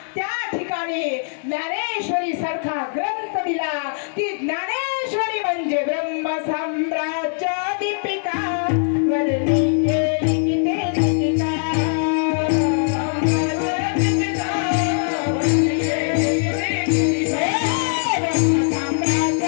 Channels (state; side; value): silent; right; digital silence